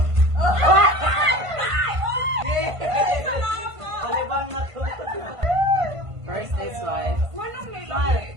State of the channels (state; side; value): late; left; 1.5 ms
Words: Palibang na to. First is wife. Manong